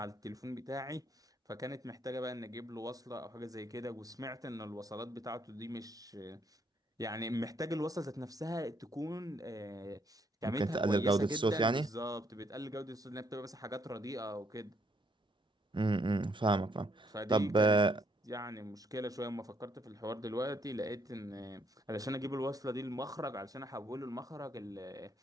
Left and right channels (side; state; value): both; normal; correlation 0.71